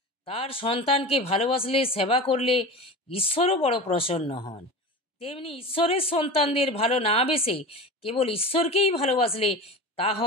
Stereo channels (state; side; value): normal; both; correlation 0.30